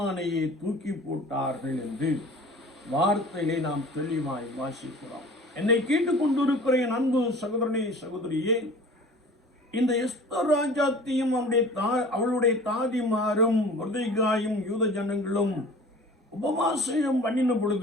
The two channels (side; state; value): both; normal; correlation 0.43